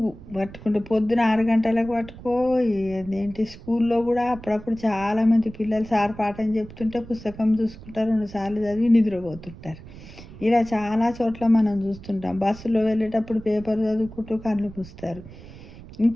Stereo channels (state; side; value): noise; right; rumble, 17 dB below the sound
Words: పట్టుకుంటే పొద్దున 6 గంటలకు పట్టుకో. ఏంటి, స్కూల్లో కూడా అప్పుడప్పుడు చాలామంది పిల్లలు సార్ పాఠం చెప్తుంటే పుస్తకం చూసుకుంటారు, 2 సార్లు చదివి నిద్రపోతుంటారు. ఇలా చాలా చోట్ల మనం చూస్తుంటాం. బస్సులో వెళ్ళేటప్పుడు పేపర్ చదువుకుంటూ కళ్ళు మూస్తారు.